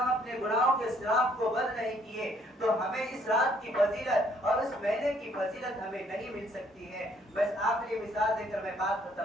اپنے گناہوں کے سراغ کو بند نہیں کیے تو ہمیں اس رات کی فضیلت اور اس مہینے کی فضیلت ہمیں نہیں مل سکتی ہے. بس آخری مثال دے کر میں بات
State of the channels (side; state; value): both; normal; correlation 0.65